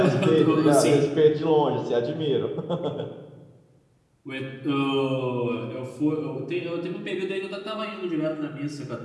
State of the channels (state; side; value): identical; both; correlation 1.00